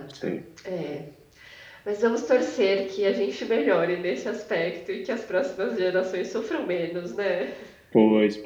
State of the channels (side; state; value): both; identical; correlation 1.00